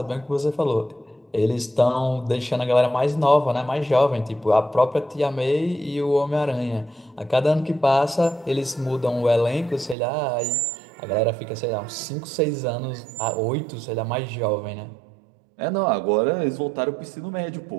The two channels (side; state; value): left; drops out; at 10.0 s